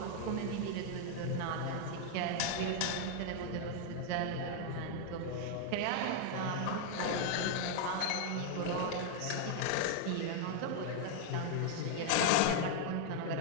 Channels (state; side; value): different; both; correlation 0.00